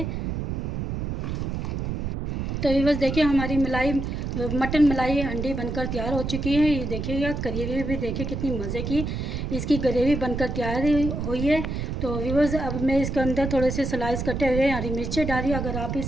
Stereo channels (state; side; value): noise; right; rumble, 3 dB below the sound